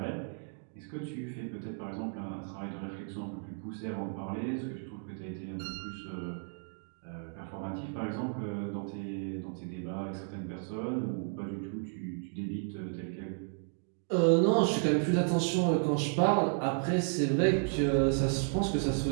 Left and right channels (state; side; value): silent; left; 56 dB below the other